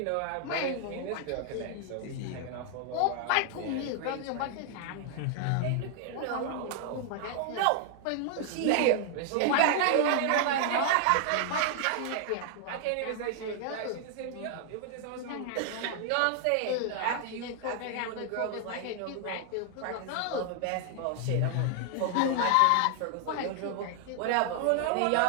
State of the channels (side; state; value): both; different; correlation 0.00